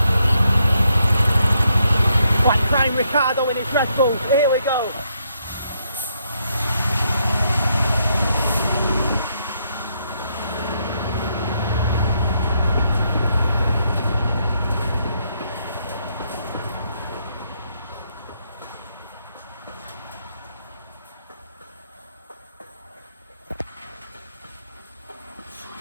Like Prime Ricardo in his Red Bull. Here we go.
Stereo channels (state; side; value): inverted; both; correlation -0.76